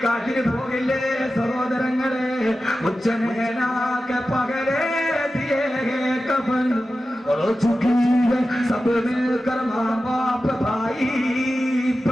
പോകില്ലേ സഹോദരങ്ങളെ? ഉച്ചനേനാക്കെ പകലേ ദിയേ കഫൻ और चुकी है सब मिलकर माँ बाप भाई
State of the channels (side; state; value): both; normal; correlation 0.93